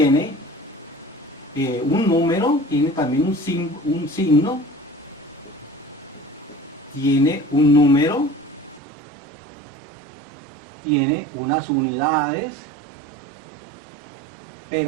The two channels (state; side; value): drops out; left; at 8.8 s